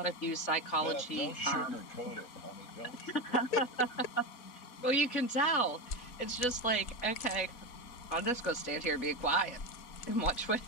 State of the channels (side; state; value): right; late; 4.1 ms